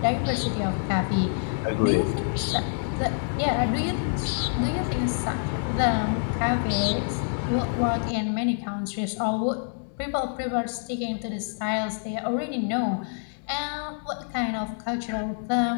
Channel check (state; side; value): silent; right; digital silence